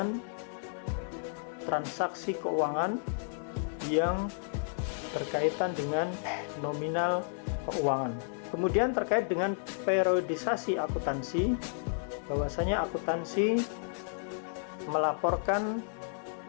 transaksi keuangan yang berkaitan dengan nominal keuangan. Kemudian terkait dengan periodisasi akuntansi, bahwasanya akuntansi melaporkan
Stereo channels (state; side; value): silent; right; digital silence